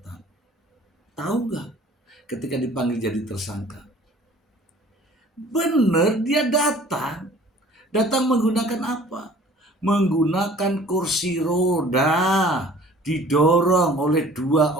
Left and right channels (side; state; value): both; normal; correlation 0.50